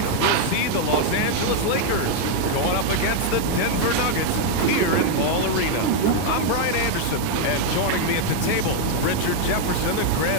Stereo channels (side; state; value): both; different; correlation 0.00